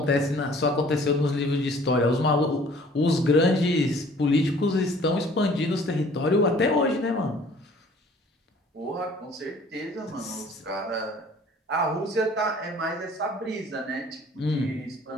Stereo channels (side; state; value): both; normal; correlation 0.53